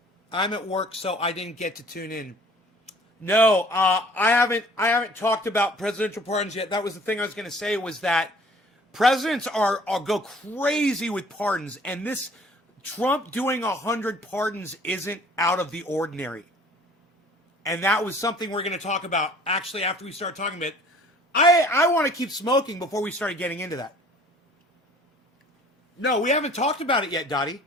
I'm at work, so I didn't get to tune in. No, I haven't talked about presidential pardons yet. That was the thing I was going to say, was that presidents are go crazy with pardons, and this Trump doing 100 pardons isn't out of the ordinary. And that was something we're going to talk about actually after we start talking about it. I want to keep smoking before we started getting into that. No, we haven't talked about it yet, Dottie.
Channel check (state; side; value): normal; both; correlation 0.52